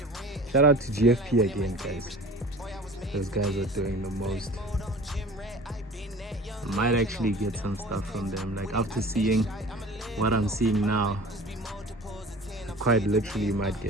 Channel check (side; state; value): both; normal; correlation 0.41